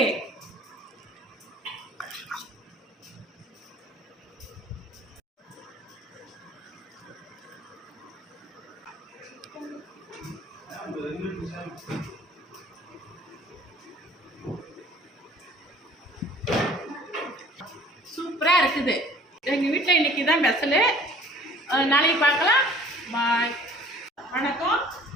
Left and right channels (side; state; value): both; normal; correlation 0.51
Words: சூப்பரா இருக்குது. எங்க வீட்டில் இன்னைக்கு தான் ஸ்பெஷலு. நாளைக்கு பார்க்கலாம். பாய். வணக்கம்.